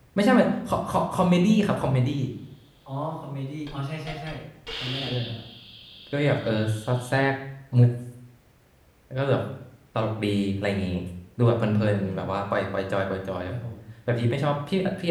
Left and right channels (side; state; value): both; identical; correlation 1.00